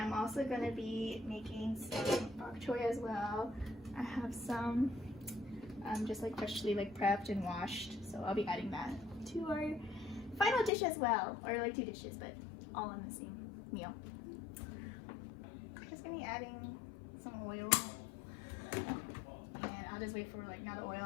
also gonna be making some bok choy as well. I have some just like freshly like prepped and washed, so I'll be adding that to our final dish as well, or like 2 dishes, but all in the same meal. I'm just gonna be adding some oil, and I'll just wait for like now the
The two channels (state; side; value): drops out; right; at 10.7 s